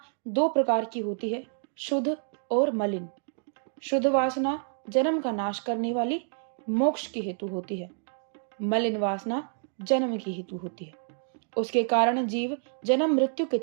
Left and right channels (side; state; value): left; silent; digital silence